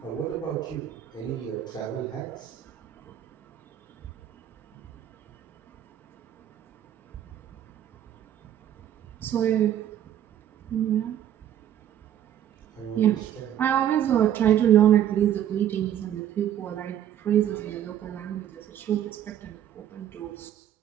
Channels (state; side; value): quieter; left; 10.7 dB